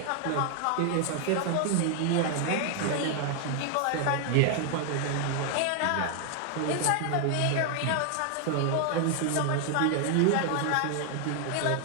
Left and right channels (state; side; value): different; both; correlation 0.00